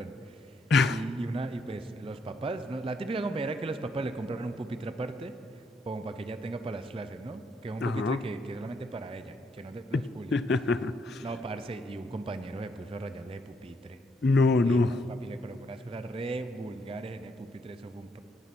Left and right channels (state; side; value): normal; both; correlation 0.74